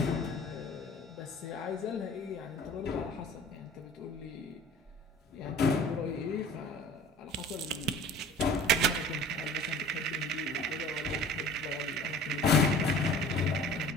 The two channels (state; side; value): normal; both; correlation 0.45